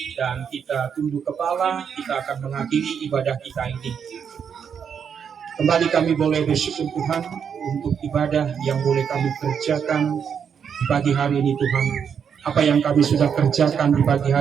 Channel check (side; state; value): left; quieter; 7.3 dB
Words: dan kita tunduk kepala. Kita akan mengakhiri ibadah kita ini. Kembali kami boleh bersyukur Tuhan untuk ibadah yang boleh kami kerjakan di pagi hari ini Tuhan. Apa yang kami sudah kerjakan di pagi